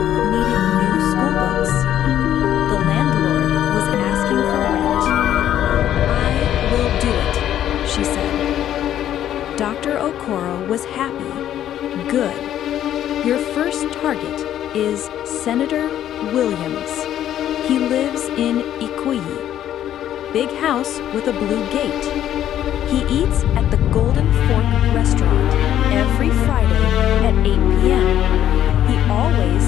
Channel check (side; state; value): right; quieter; 11.3 dB